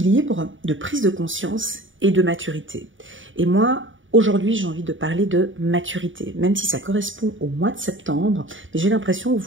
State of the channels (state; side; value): late; left; 0.56 ms